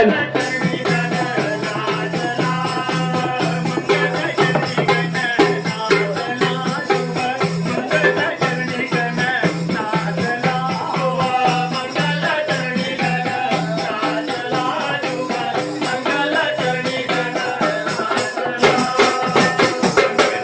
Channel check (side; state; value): both; identical; correlation 1.00